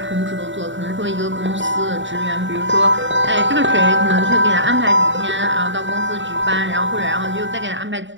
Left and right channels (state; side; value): late; left; 0.54 ms